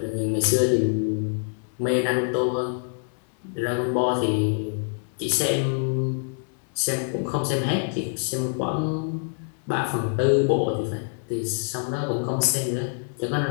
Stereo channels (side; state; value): right; silent; 61 dB below the other